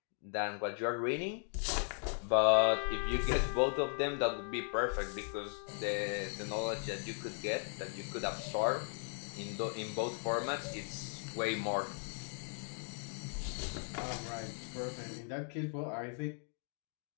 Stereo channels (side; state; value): right; silent; 53 dB below the other